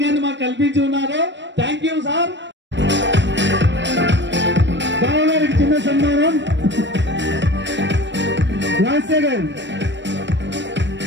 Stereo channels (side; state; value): left; late; 0.53 ms